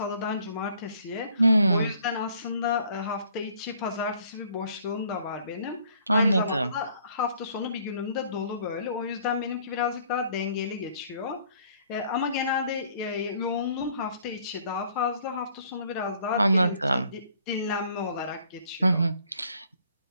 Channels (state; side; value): inverted; both; correlation -0.60